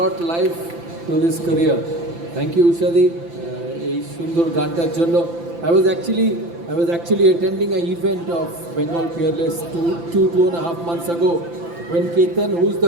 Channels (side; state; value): left; late; 5.9 ms